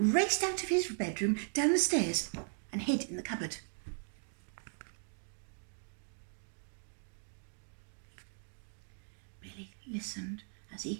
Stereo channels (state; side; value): silent; left; 53 dB below the other